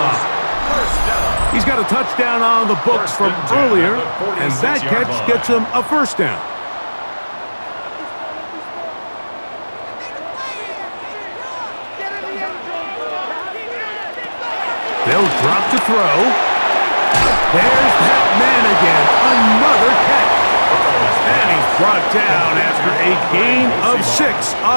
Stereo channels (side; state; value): both; inverted; correlation -1.00